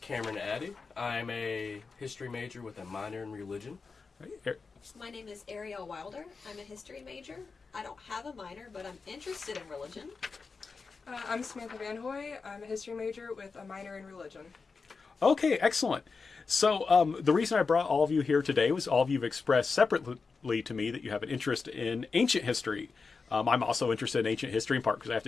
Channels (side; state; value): right; quieter; 4.7 dB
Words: Addy. I'm a history major with a minor in religion. Right. My name is Arielle Wilder. I'm a history major. I don't have a minor, but I'm interested in religion. I'm Samantha Van Hoy. I'm a history major with a minor in religion. Okay, excellent. So the reason I brought all of you here today was all of you have expressed separately to me that you have an interest in ancient history. I'm also interested in ancient history in part because I have